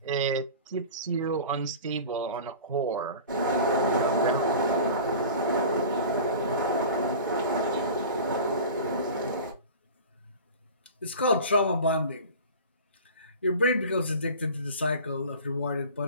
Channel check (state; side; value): inverted; both; correlation -0.37